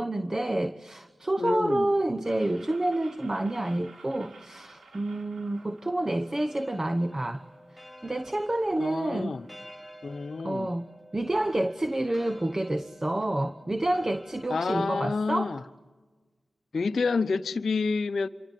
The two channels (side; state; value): both; normal; correlation 0.95